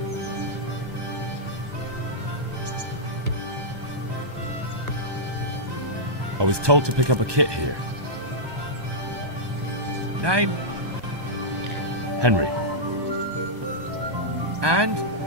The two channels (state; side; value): late; left; 1.2 ms